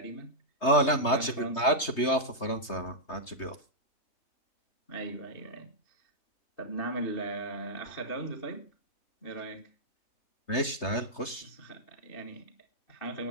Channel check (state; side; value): late; right; 3.3 ms